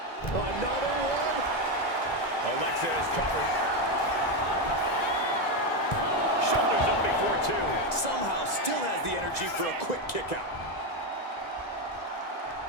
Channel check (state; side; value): late; right; 2.0 ms